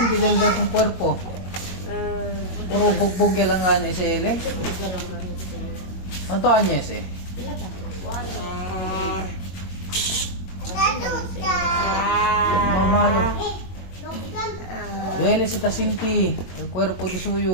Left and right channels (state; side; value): late; right; 22 ms